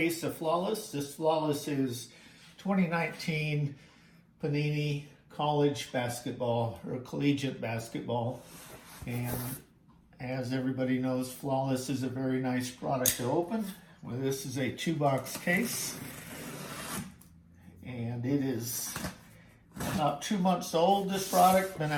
of Flawless. This Flawless is 2019 Panini College basketball or collegiate basketball. And as everybody knows, Flawless is a very nice product to open. Well, this is a 2-box case, and it is about 2 months old. This product been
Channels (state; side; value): identical; both; correlation 1.00